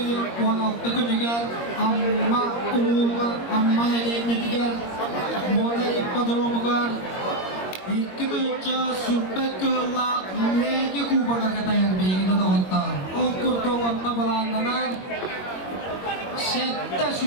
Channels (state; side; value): late; right; 21 ms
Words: 16 günüger amma uluğugar, amma heleyinetiger Mola ippadromugar İki büyükçe sürpek kığılla lege kubaga katayar beğeni dağıttar. O kurduğunda balanlanar sette